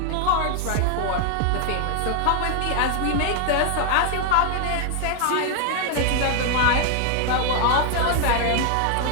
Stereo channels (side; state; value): both; different; correlation 0.00